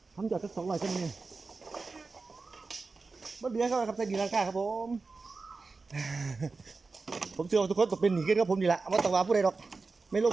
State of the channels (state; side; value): quieter; left; 4.1 dB